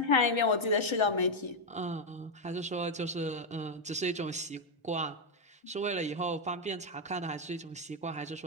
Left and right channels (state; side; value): normal; both; correlation 0.02